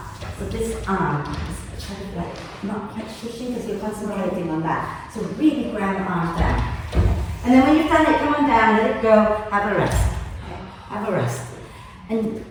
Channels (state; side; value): identical; both; correlation 1.00